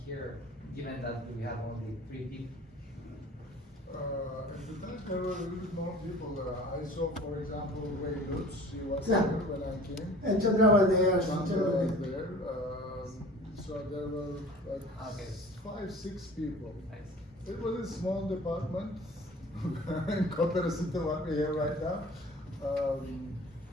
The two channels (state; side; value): normal; both; correlation 0.45